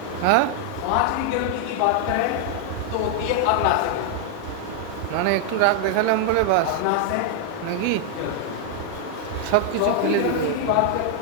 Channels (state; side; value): different; both; correlation 0.00